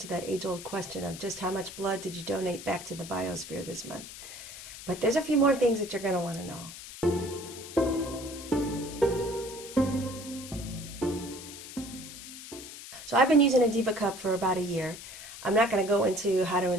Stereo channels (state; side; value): noise; left; hiss, 13 dB below the sound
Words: that age-old question of just how much blood did you donate back to the biosphere this month. But there's a few more things that you're going to want to know. So I've been using a Diva Cup for about a year. I'm not going to go into how to